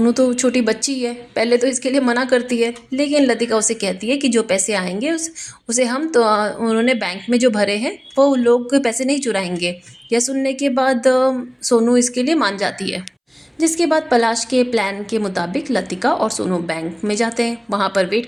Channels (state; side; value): identical; both; correlation 1.00